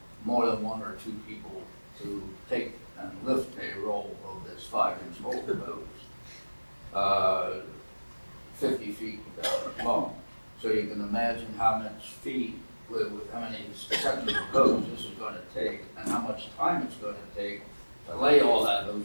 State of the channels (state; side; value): inverted; both; correlation -1.00